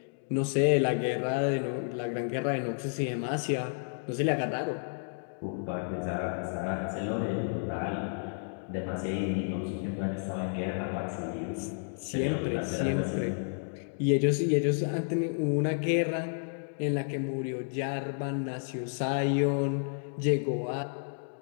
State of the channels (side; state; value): right; silent; digital silence